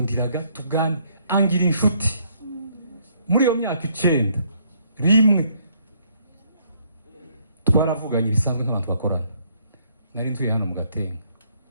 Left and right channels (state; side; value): inverted; both; correlation -0.68